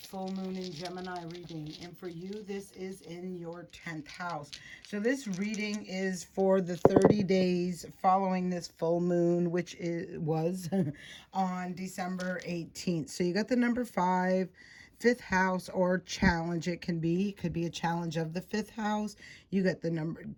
moon in Gemini reading. And for you, this is in your 10th house. So this reading is for the 30 days following this full moon, which was on December 18th. So you got the number 5, fifth house, or challenge. It can be. It could be a challenge of the fifth house. You got the number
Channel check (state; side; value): identical; both; correlation 1.00